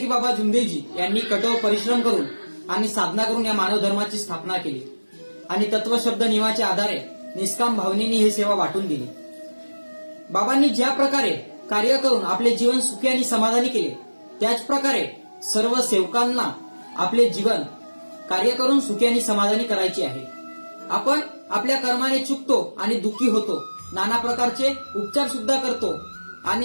बाबा जुमदेव जी यांनी कठोर परिश्रम करून आणि साधना करून या मानव धर्माची स्थापना केली आणि तत्वशब्द नियमाच्या आधारे निष्काम भावनेने ही सेवा वाटून दिली. बाबांनी ज्या प्रकारे कार्य करून आपले जीवन सुखी आणि समाधानी केले, त्याच प्रकारे सर्व सेवकांना आपले जीवन कार्य करून सुखी आणि समाधानी करायचे आहे. आपण आपल्या कर्माने चुकतो आणि दुःखी होतो, नाना प्रकारचे उपचार सुद्धा करतो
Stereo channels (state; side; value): inverted; both; correlation -1.00